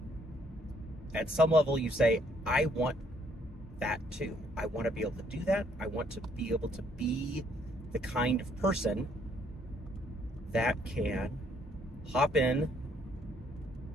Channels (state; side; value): normal; both; correlation 0.67